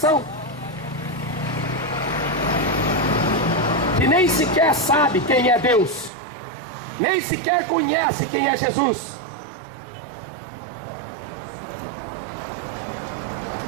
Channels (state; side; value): drops out; left; at 6.1 s